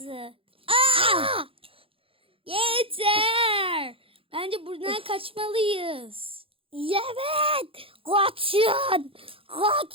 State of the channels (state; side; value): late; left; 0.27 ms